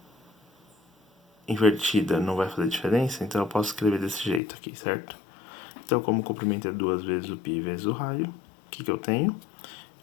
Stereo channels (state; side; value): drops out; right; at 4.4 s